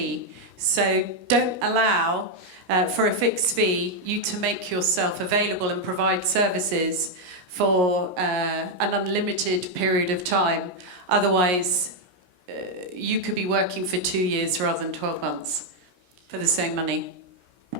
So don't allow, for a fixed fee, you to make yourself available and provide services for an unlimited period of time. Otherwise, you could be working for 2 years rather than 12 months. For the same money.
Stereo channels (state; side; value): late; left; 17 ms